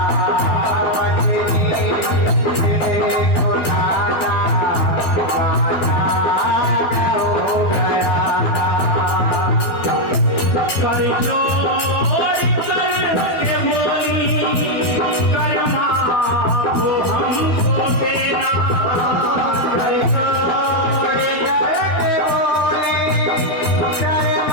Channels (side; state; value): right; late; 12 ms